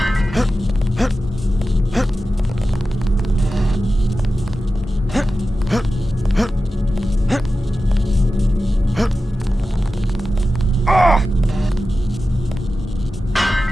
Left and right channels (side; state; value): both; normal; correlation 0.93